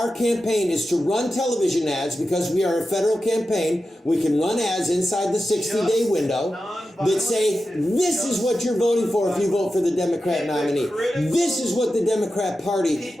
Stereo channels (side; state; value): both; normal; correlation 0.92